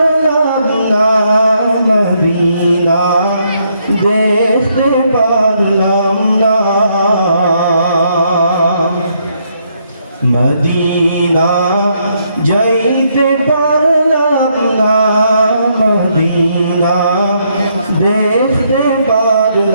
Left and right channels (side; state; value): both; inverted; correlation -0.74